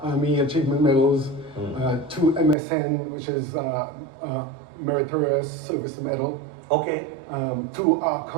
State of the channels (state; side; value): drops out; left; at 2.6 s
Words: Army Achievement Medals, 2 MSN, which is Meritorious Service Medal. Okay. 2